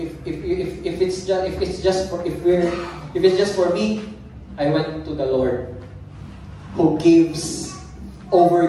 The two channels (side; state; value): both; identical; correlation 1.00